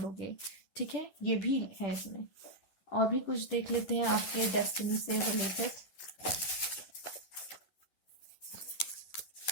ठीक है। ये भी है इसमें। और भी कुछ देख लेते हैं आपके डेस्टिनी से रिलेटेड।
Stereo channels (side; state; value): right; late; 11 ms